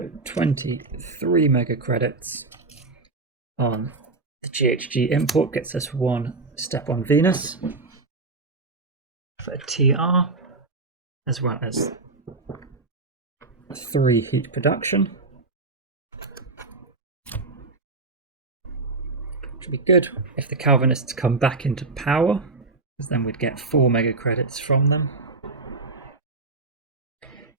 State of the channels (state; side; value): quieter; left; 3.6 dB